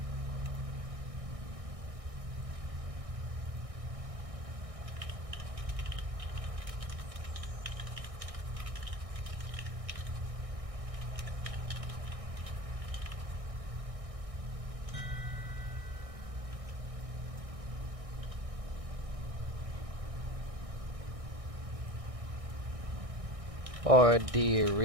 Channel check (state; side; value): late; left; 1.6 ms